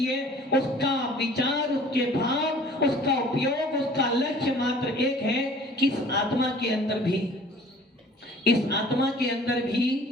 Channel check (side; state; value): both; normal; correlation 0.50